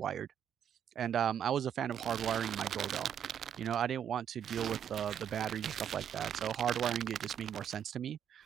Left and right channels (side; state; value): left; quieter; 9.0 dB